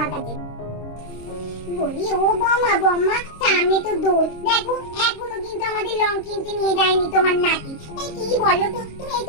কাছে। বলি ও বম্মা, বম্মা সামনে তো দোল, দেখো এখনো কিন্তু আমাদের লং কিনতে নিয়ে যায়নি তোমার নাতি। এই কি বলো তো, তুমি এই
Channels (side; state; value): right; late; 26 ms